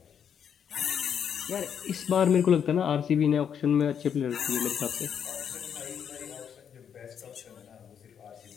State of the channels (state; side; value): quieter; right; 8.0 dB